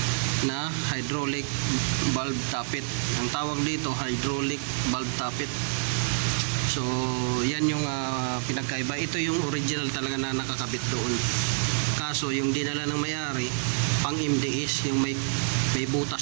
na hydraulic valve tappet. Ang tawag dito hydraulic valve tappet. So yan yung pinagkaiba. Ito yung original talaga na nakakabit doon. Kaso yung dinala ng may-ari pang MDS, yung may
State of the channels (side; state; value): left; silent; digital silence